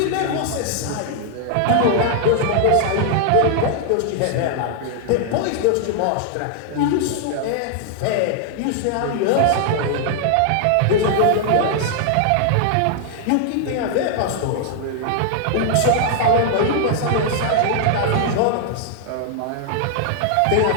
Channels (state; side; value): different; both; correlation 0.00